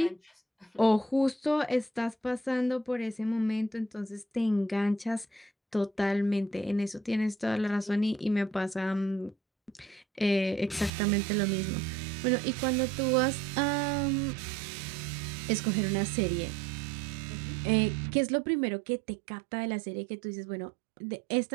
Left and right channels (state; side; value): drops out; left; at 10.9 s